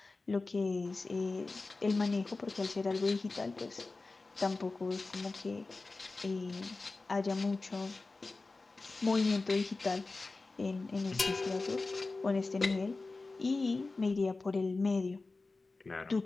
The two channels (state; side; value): quieter; right; 3.6 dB